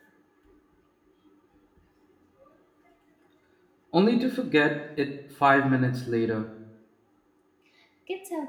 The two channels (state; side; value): identical; both; correlation 1.00